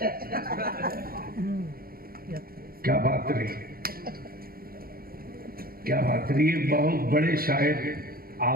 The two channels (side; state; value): left; late; 0.43 ms